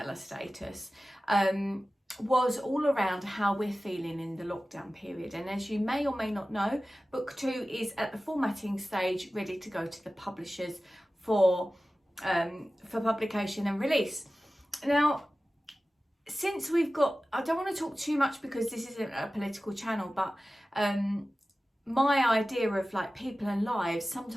status, was all around how we're feeling in the lockdown period. And as you may or may not know, book 2 is at the formatting stage, ready to go to the publishers for publication and release. Now, since we've got, I don't want to talk too much because this isn't a political channel, but my idea of like people and lives,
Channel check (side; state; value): both; normal; correlation 0.96